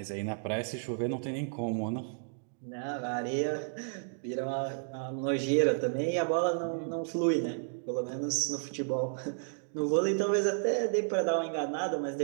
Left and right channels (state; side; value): silent; left; digital silence